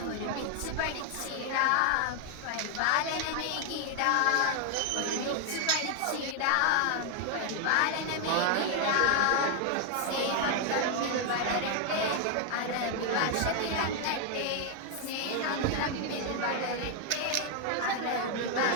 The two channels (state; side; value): different; both; correlation 0.01